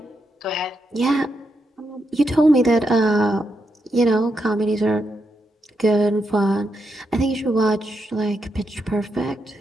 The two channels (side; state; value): both; normal; correlation 0.83